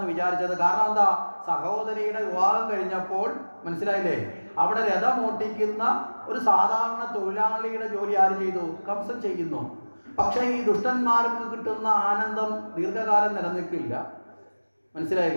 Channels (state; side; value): inverted; both; correlation -1.00